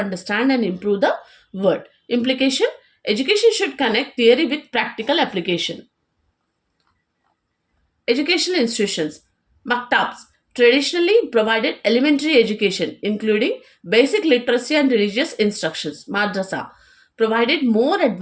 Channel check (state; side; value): identical; both; correlation 1.00